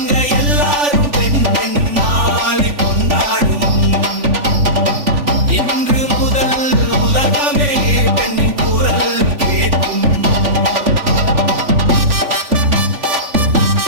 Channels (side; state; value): left; late; 3.5 ms